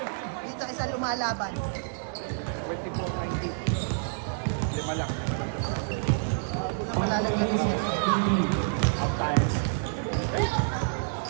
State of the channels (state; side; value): silent; left; 59 dB below the other